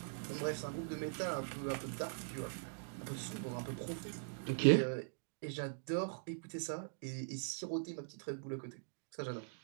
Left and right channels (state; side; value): silent; left; digital silence